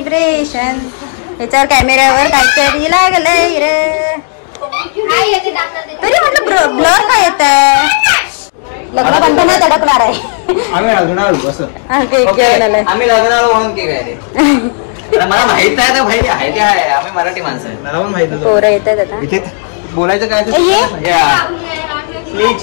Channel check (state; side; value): silent; right; 75 dB below the other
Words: याच्यावर कॅमेऱ्यावर काहीतरी लागलंय रे. तरी म्हटलं ब्लर काय येत आहे. लग्न बंधनात अडकणार आहे. आम्ही लग्नावर बस केक घेऊन आलाय. आम्ही लग्नावर म्हणून केक आहे. मला माहित आहे ना भाई आहे ते आहे. आम्ही मराठी माणसं आहे. मला पण माहित आहे. पोरं येतात आता. इथे बोलायचं काय